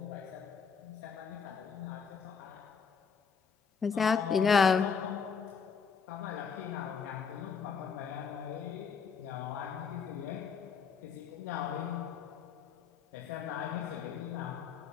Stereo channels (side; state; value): right; quieter; 6.1 dB